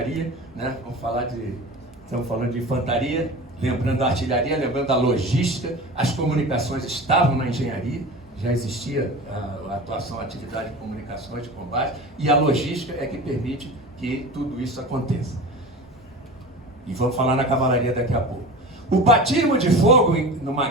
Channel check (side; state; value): both; normal; correlation 0.33